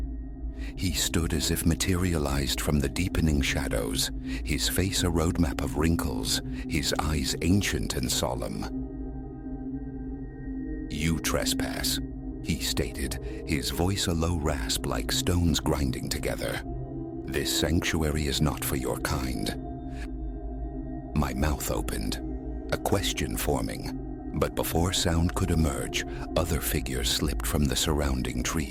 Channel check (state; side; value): identical; both; correlation 1.00